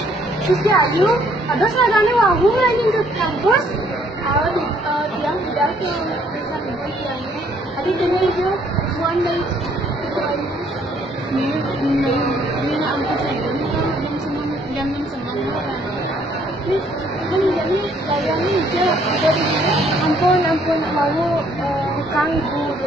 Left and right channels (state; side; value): normal; both; correlation 0.65